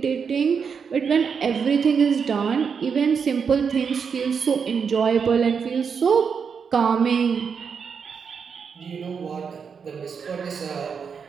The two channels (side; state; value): left; quieter; 6.3 dB